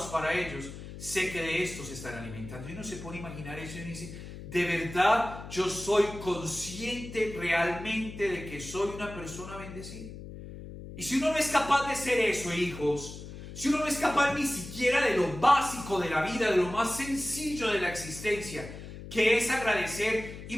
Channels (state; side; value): noise; left; hum, 12 dB below the sound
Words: para ellos. Sé que de esto se están alimentando. Y uno se pone a imaginar eso y dice, de verdad yo soy consciente realmente de que soy una persona bendecida. Y si uno no es capaz de ser eso, hijos, si uno no es capaz ni siquiera de lo básico de la vida, de lo más sencillo de la existencia, que es agradecer,